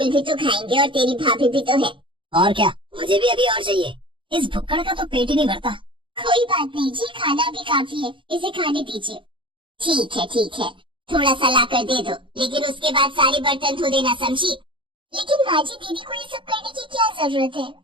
भी तो खाएंगे और तेरी भाभी भी तो है। और क्या, मुझे भी अभी और चाहिए। इस भुक्कड़ का तो पेट ही नहीं भरता। कोई बात नहीं जी, खाना भी काफी है, इसे खाने दीजिए। ठीक है, थोड़ा सा ला कर दे दो, लेकिन उसके बाद सारे बर्तन धो देना, समझी? लेकिन माँ जी, दीदी को ये सब करने की क्या जरूरत है?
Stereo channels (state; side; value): late; left; 0.24 ms